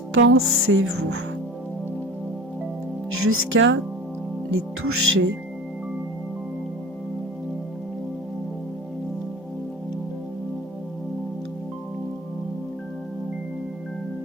jusqu'à les toucher.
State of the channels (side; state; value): both; normal; correlation 0.38